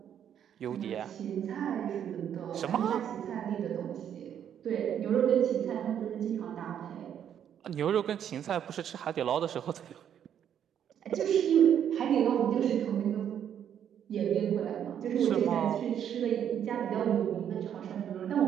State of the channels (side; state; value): left; quieter; 9.3 dB